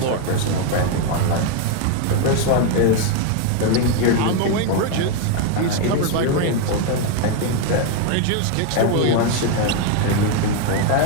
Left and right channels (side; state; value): both; different; correlation 0.01